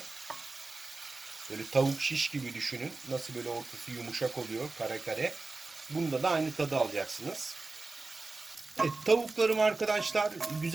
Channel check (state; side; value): quieter; left; 3.5 dB